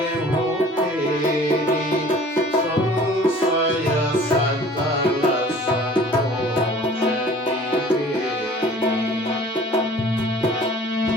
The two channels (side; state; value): both; normal; correlation 0.49